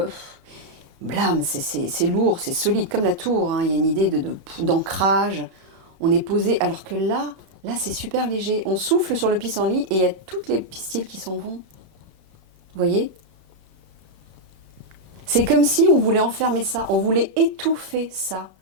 blâme, c'est lourd, c'est solide, comme la tour. Hein. Il y a une idée d'ancrage. On est posé, alors que là c'est super léger. On souffle sur le pissenlit et il y a toutes les pistils qui s'en vont. Vous voyez ? C'est comme si on voulait enfermer ça, on voulait étouffer ça,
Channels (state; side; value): late; left; 31 ms